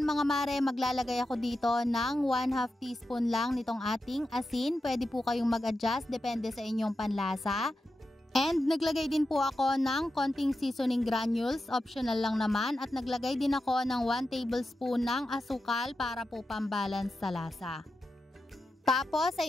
mga mare, maglalagay ako dito ng 1/2 teaspoon lang nitong ating asin. Pwede po kayong mag-adjust depende sa inyong panlasa. And naglagay din po ako ng konting seasoning granules, optional lang naman. At naglagay din ako ng 1 tablespoon ng asukal para po pambalance sa lasa. Tapos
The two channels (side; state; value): both; normal; correlation 0.90